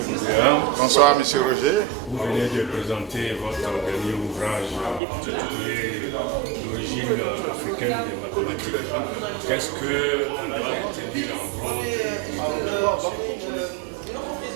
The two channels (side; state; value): left; drops out; at 5.0 s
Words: Bonsoir, M. Roger. Vous venez de présenter votre dernier ouvrage intitulé L'origine africaine des mathématiques. Qu'est-ce qu'on doit retenir en gros?